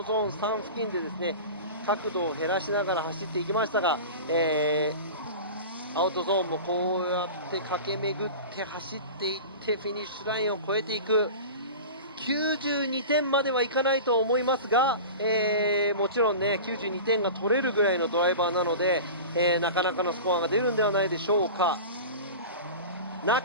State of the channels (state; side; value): inverted; both; correlation -0.33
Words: ゾーン3付近でですね角度を減らしながら走っていきましたが、アウトゾーンもこうやって駆け巡って走っていってフィニッシュラインを越えていく。92点まではいかないと思いますが、もちろんね92点が取れるぐらいのドライバーなので、なかなかのスコアが出るんではないでしょうか。Not